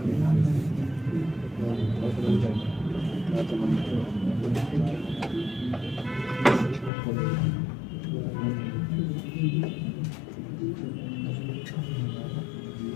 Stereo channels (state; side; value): drops out; right; at 6.9 s